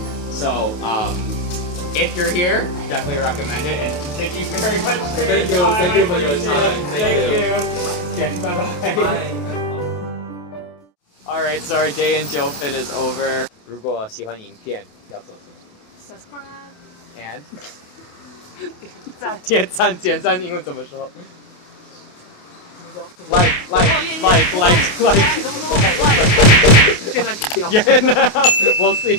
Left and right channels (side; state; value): right; late; 28 ms